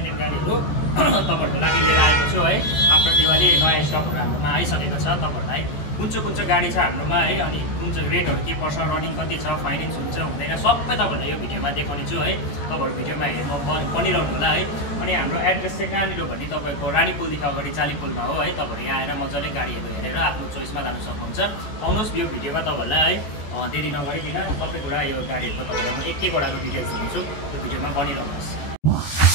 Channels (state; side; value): late; right; 14 ms